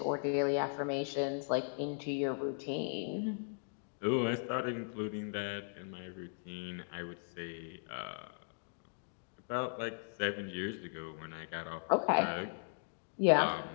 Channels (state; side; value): silent; right; digital silence